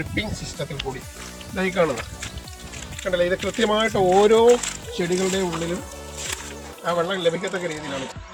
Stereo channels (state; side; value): identical; both; correlation 1.00